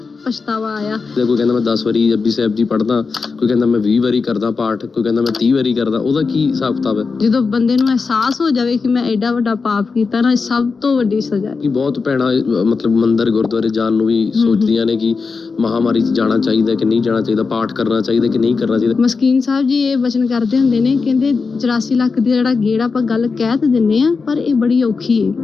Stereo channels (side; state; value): right; quieter; 4.7 dB